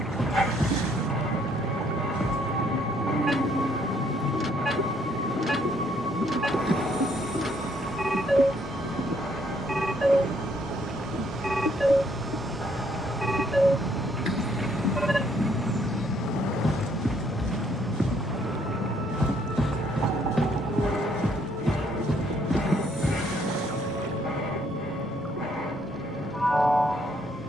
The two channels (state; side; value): normal; both; correlation 0.68